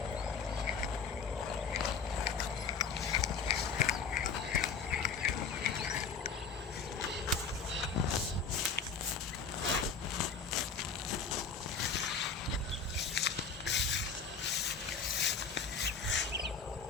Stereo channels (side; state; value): right; quieter; 5.5 dB